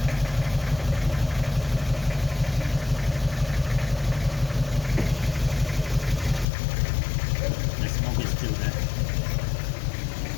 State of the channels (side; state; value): right; drops out; at 6.5 s